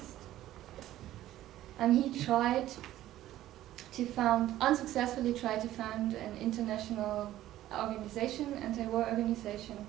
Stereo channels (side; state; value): left; quieter; 13.9 dB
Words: And he unsuccessfully tried to found an international organization, anti-war organization,